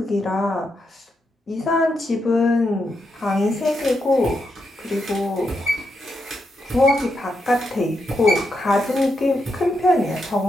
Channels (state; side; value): normal; both; correlation 0.83